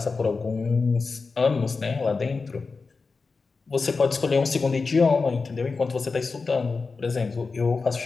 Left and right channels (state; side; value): quieter; right; 4.4 dB